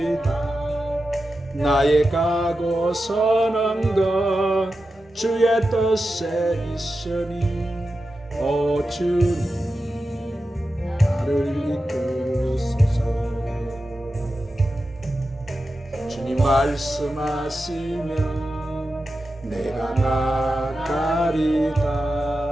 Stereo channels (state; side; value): normal; both; correlation 0.91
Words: 나의 가고 서는 것 주의 뜻에 있으니 오 주님 나를 이끄소서. 주님 말씀하시면 내가